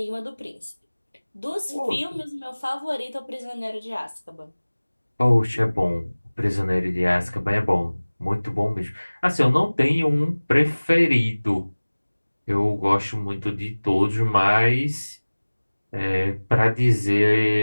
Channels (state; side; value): inverted; both; correlation -1.00